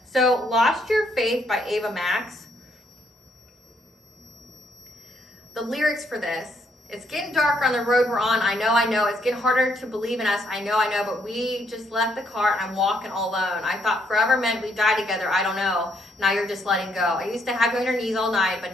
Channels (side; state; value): both; normal; correlation 0.72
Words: so Lost Your Faith by Ava Max. The lyrics for this: it's getting darker on the road we're on. I know. It's getting harder to believe in us. I know. But we just left the car and I'm walking all alone. I thought forever meant we die together. I don't know. Now you're just letting go. I used to have you on your knees all night, but